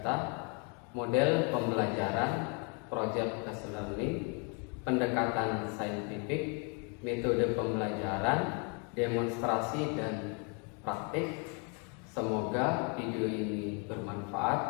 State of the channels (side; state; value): right; quieter; 36.1 dB